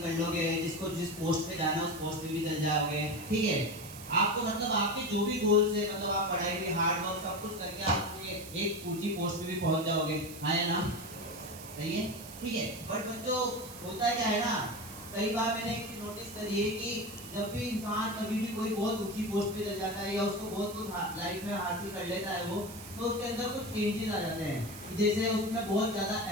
लोगे, जिसको जिस पोस्ट पे जाना है उस पोस्ट पे भी चल जाओगे, ठीक है। आपको मतलब आपके जो भी गोल्स है, मतलब आप पढ़ाई भी, हार्ड वर्क सब कुछ करके आप अपनी एक ऊंची पोस्ट पे भी पहुंच जाओगे, है ना? सही है, ठीक है। बट बच्चों, होता क्या है ना, कई बार मैंने एक चीज नोटिस करी है कि जब भी इंसान कभी भी कोई बहुत ऊंची पोस्ट पे चल जाता है या उसको बहुत कुछ लाइफ में हासिल कर लेता है वो, तो उसके अंदर कुछ चेंजेस आ जाते हैं। जैसे उसमें बहुत ज्यादा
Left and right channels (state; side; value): noise; right; hiss, 14 dB below the sound